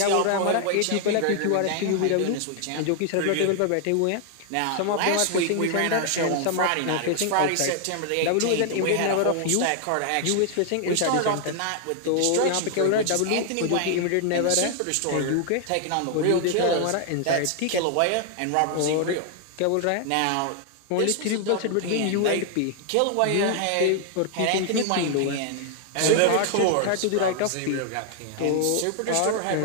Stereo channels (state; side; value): different; both; correlation 0.00